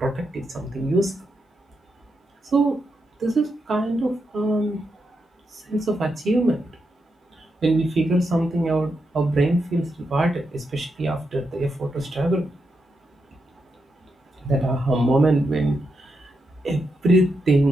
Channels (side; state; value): both; normal; correlation 0.84